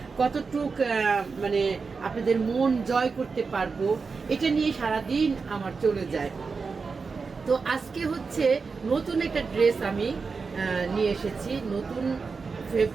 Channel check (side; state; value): left; quieter; 4.8 dB